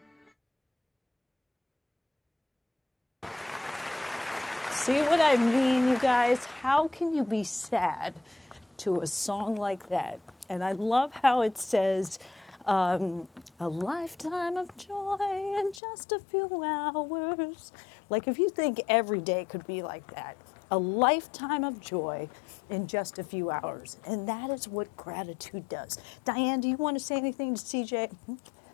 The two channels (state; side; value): drops out; right; at 15.8 s